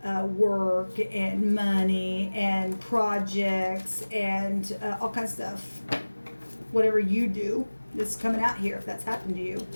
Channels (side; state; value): both; inverted; correlation -1.00